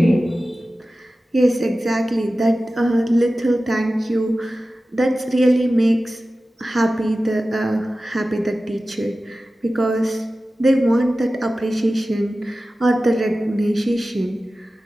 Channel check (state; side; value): normal; both; correlation 0.95